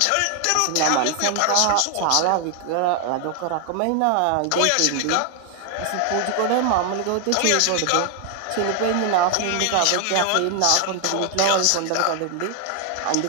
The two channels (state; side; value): different; both; correlation 0.00